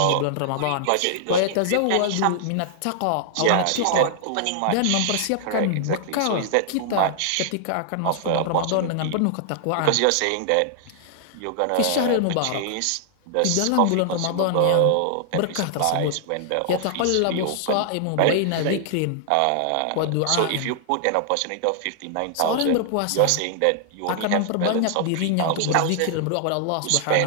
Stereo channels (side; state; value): both; different; correlation -0.01